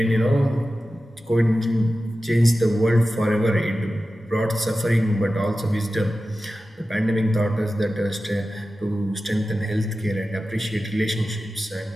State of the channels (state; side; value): normal; both; correlation 0.94